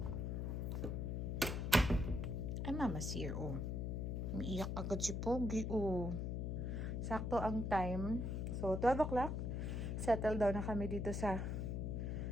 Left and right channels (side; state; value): left; noise; hum, 1 dB below the sound